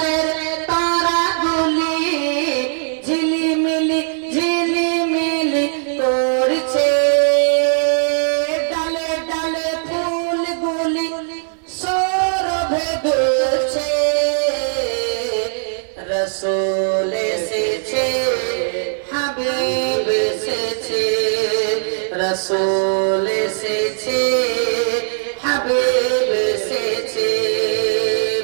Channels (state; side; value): silent; left; 67 dB below the other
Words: তারাগুলি ঝিলিমিলি ঝিলিমিলি করছে, ডালে ডালে ফুলগুলি সৌরভে দুলছে। রসূল এসেছে, হাবিব এসেছে, রসূল এসেছে, হাবিব এসেছে।